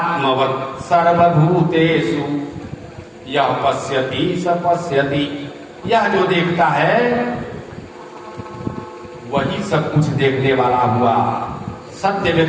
सर्वभूतेषु यह पश्यति स पश्यति। यह जो देखता है वही सब कुछ देखने वाला हुआ। सत्य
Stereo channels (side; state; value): both; identical; correlation 1.00